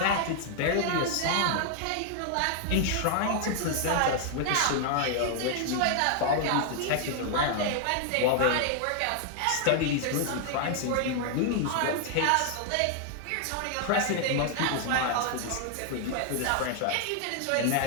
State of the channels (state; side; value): different; both; correlation 0.00